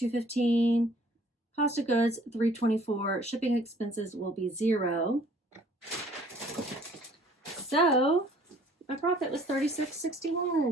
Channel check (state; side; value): normal; both; correlation 0.57